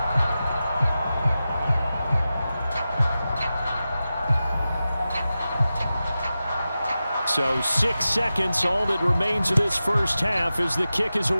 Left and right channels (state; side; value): inverted; both; correlation -0.93